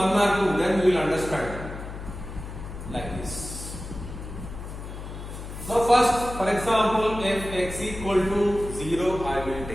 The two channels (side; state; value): left; noise; hum, 10 dB below the sound